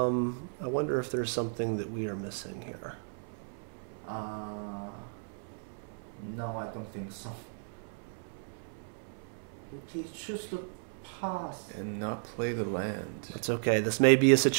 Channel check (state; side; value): silent; left; 55 dB below the other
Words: wonder if there's something that we are missing here. No, I don't think so. He chooses to pass. And not play the land. It's okay. This may be a